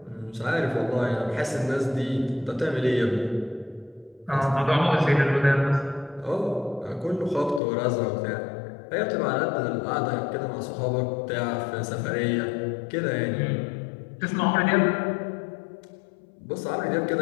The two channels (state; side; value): drops out; right; at 7.6 s